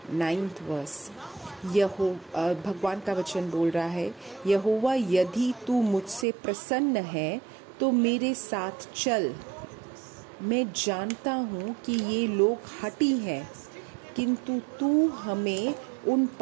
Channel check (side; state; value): left; drops out; at 6.2 s